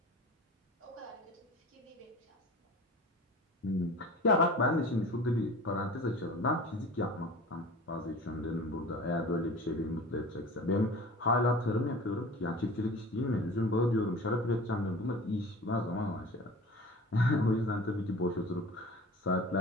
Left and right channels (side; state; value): both; normal; correlation 0.39